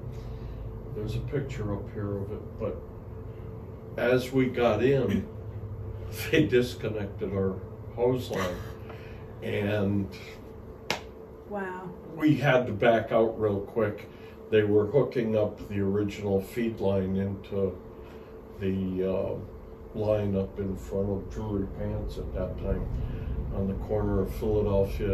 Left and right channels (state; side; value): identical; both; correlation 1.00